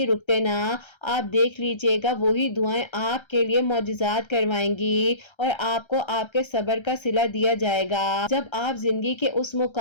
रुकते ना, आप देख लीजिए دیجیے گا وہی دعائیں آپ کے لیے معجزات کروائیں گی اور آپ کو آپ کے صبر کا صلہ دیا جائے گا۔ جب آپ زندگی کے اس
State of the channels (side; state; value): right; late; 1.3 ms